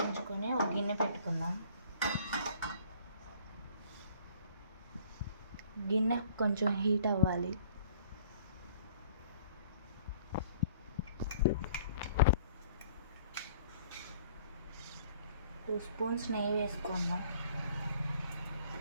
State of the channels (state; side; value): inverted; both; correlation -0.55